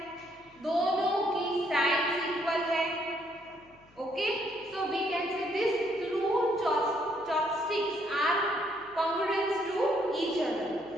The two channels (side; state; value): left; noise; hum, 29 dB below the sound